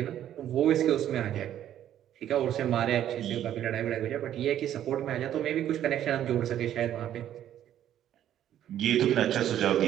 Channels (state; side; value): quieter; left; 11.2 dB